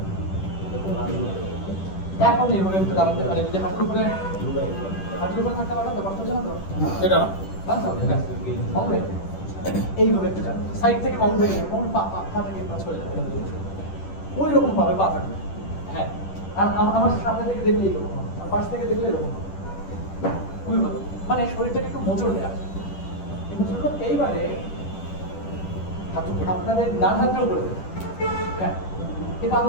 এখন এইভাবে একটু দাঁড়াতে পারে, যদি হাঁটুর উপরে থাকতে পারেন তো কষ্ট হচ্ছে না তো? এটা এইভাবে একটু যান, সাইড থেকে মন ভেঙে পা থেকে পাঁচ করে যাবে, ওই রকম ভাবে পা থাকবে। হ্যাঁ আর আমার সামনে থেকে দেখলে এইরকম, আর পাশ থেকে দেখলে এরকম, খুবই ভালো, মানে শরীরটাকে একটু মোচড় দেওয়া। এইবারে আপনাদের ডান হাতটাও করে দেবেন। হ্যাঁ এই পা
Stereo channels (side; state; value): right; late; 10 ms